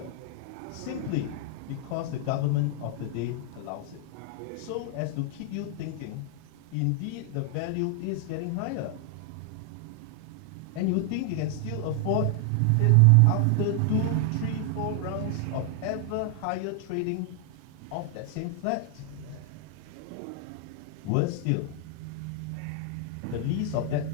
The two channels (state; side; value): different; both; correlation 0.00